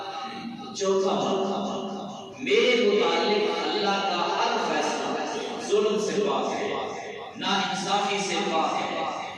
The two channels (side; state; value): both; identical; correlation 1.00